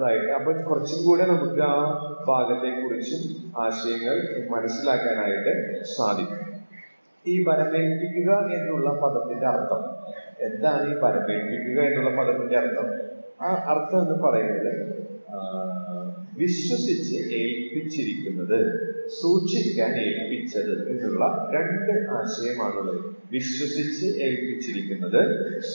അപ്പൊ കുറച്ചും കൂടെ നമുക്ക് ആ ഭാഗത്തെ കുറിച്ചും ആശയങ്ങൾ മനസ്സിലാക്കാനായിട്ട് സാധിക്കും. ഈ വരമേൽപ്പിക്കുക എന്നുള്ള പദത്തിന്റെ അർത്ഥം എന്താണ്? ഈ വരമേൽപ്പിക്കുക എന്നുള്ള പദത്തിന്റെ അർത്ഥം, ആ അർത്ഥം എന്ന് പറയുന്നത് വിശ്വസിച്ച് ഏൽപ്പിച്ചിരിക്കുന്നത്, സൂക്ഷിക്കാൻ ഏൽപ്പിച്ചത് എന്നുള്ള രണ്ട് ആശയമാണുള്ളത്. വിശ്വസിച്ച് ഏൽപ്പിച്ചിരിക്കുന്നത്,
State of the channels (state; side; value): inverted; both; correlation -1.00